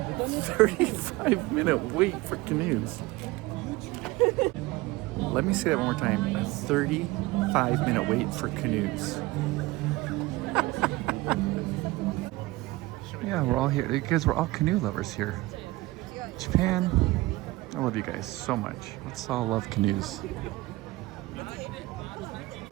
35-minute wait for canoes. Let me say that one more time. A 35-minute wait for canoes. Yeah, we're all here because we're all canoe lovers here. Japan, I love you guys so much. Let's all love canoes.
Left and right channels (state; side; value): quieter; left; 20.2 dB